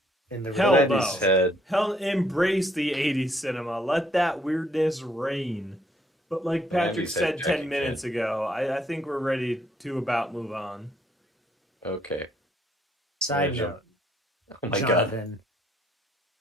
In the Hell real- no. 90s had Hell, embrace the 80s cinema. Let that weirdness reign. But like Patrick 90s had said 10 Jackie minutes Chan. ago, I think we're ready to about move on. okay. Side Yeah, note, Oh my god. Jonathan.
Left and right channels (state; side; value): normal; both; correlation 0.68